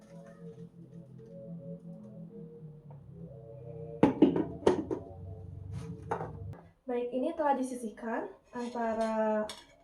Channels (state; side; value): identical; both; correlation 1.00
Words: Baik, ini telah disisihkan antara